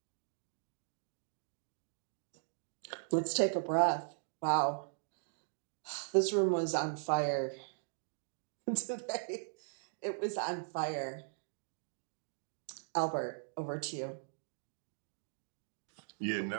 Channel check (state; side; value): silent; left; digital silence